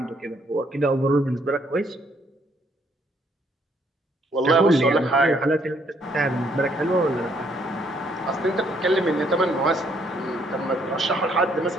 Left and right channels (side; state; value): both; normal; correlation 0.68